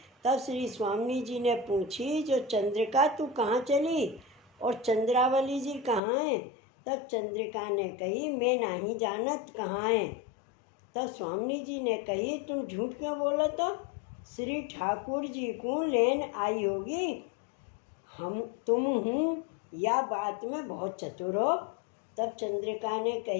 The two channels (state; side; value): drops out; right; at 6.0 s